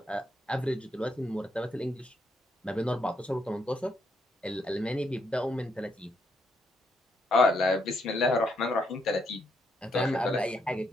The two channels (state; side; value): normal; both; correlation 0.77